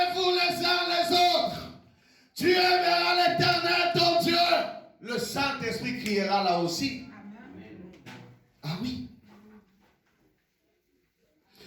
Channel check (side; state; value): both; identical; correlation 1.00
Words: les uns les autres. Tu aimeras l'Éternel ton Dieu. Le Saint-Esprit criera là aussi. Ah oui.